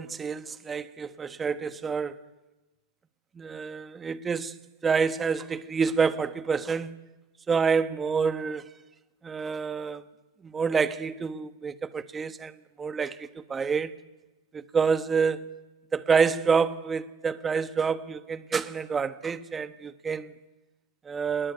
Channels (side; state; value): left; quieter; 5.4 dB